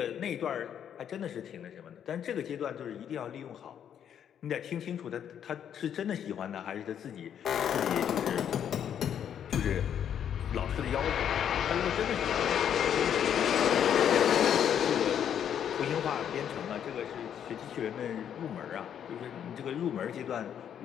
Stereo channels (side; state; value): right; quieter; 9.1 dB